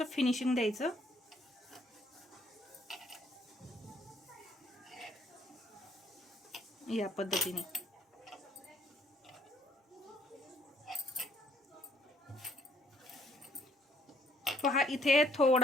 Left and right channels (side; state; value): both; normal; correlation 0.65